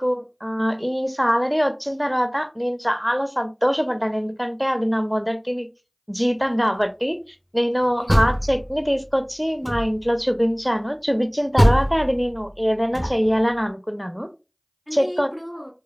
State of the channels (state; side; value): identical; both; correlation 1.00